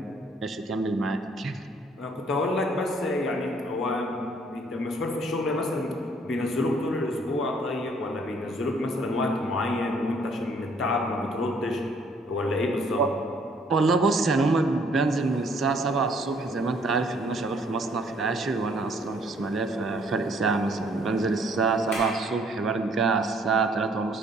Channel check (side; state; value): both; normal; correlation 0.63